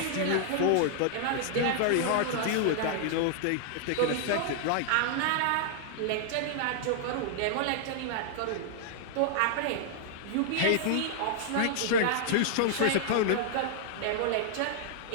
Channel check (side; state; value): both; different; correlation -0.01